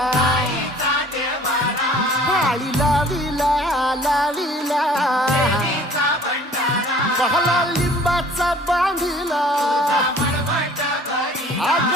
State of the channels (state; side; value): normal; both; correlation 0.51